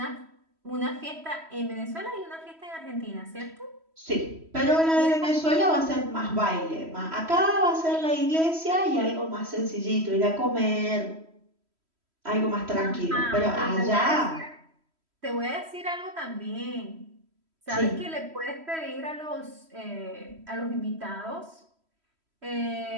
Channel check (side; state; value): left; late; 3.1 ms